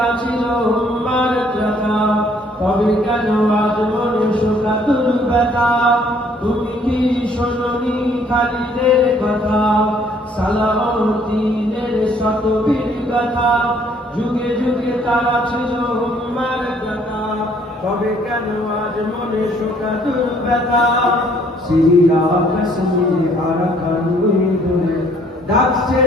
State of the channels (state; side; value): normal; both; correlation 0.62